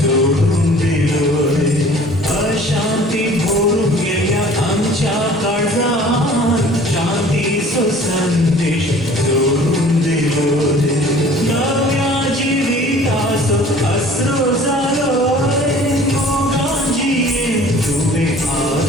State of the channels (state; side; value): normal; both; correlation 0.49